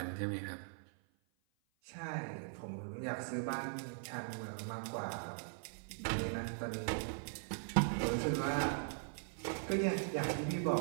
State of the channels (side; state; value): left; silent; 51 dB below the other